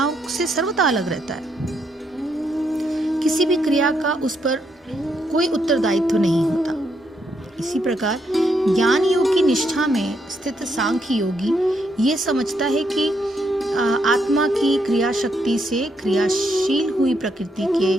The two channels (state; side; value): normal; both; correlation 0.77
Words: से सर्वथा अलग रहता है। किसी भी क्रिया का उस पर कोई उत्तरदायित्व नहीं होता। इसी प्रकार ज्ञान योग की निष्ठा में स्थित सांख्य योगी ये समझता है कि आत्मा की क्रिया शक्ति से क्रियाशील हुई प्रकृति के